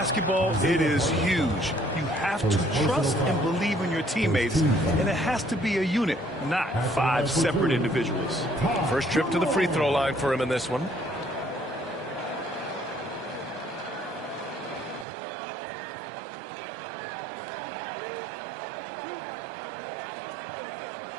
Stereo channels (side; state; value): left; drops out; at 15.1 s